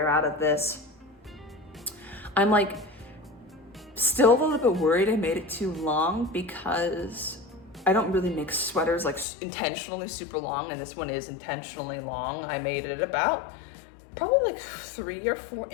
out of this. I'm like still a little bit worried I made it too long because I don't really make sweaters like intentionally super long, and this one is intentionally long. I made it about probably like 3 or 4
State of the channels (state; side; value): drops out; right; at 9.2 s